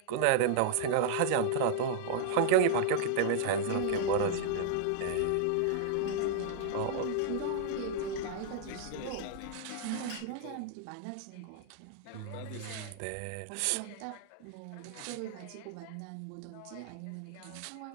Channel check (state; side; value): different; both; correlation -0.01